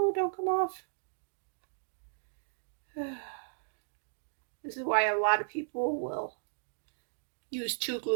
don't come off. This is why a lot of people will use 2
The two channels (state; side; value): silent; left; digital silence